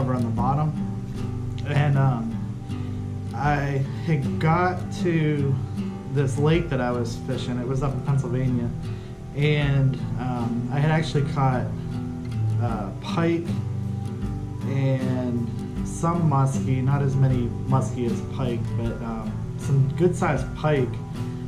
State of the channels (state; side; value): identical; both; correlation 1.00